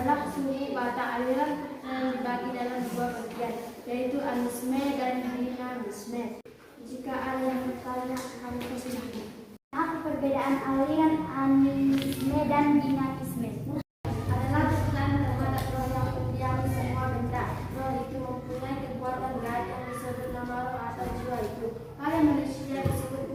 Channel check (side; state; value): both; identical; correlation 1.00